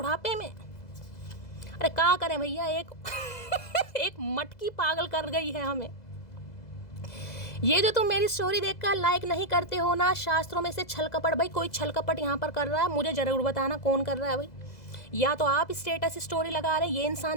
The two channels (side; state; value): right; late; 2.0 ms